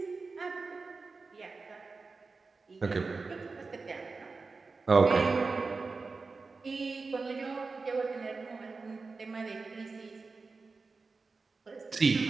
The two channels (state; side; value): quieter; left; 4.2 dB